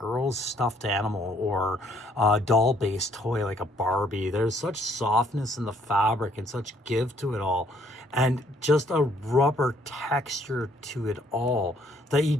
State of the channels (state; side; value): normal; both; correlation 0.65